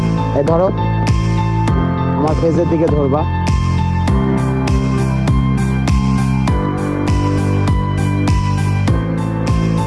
এই ধরো আমার ফেসের দিকে ধরবা,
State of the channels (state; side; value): identical; both; correlation 1.00